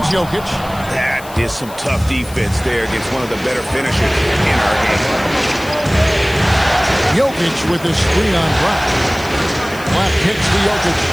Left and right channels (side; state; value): left; noise; hiss, 19 dB below the sound